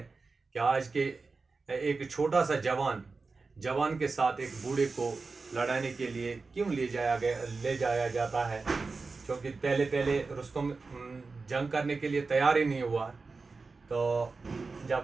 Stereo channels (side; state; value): left; quieter; 4.1 dB